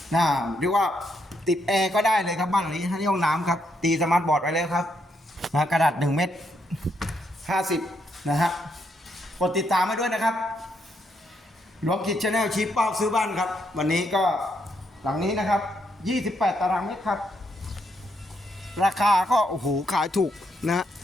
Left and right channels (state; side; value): normal; both; correlation 0.77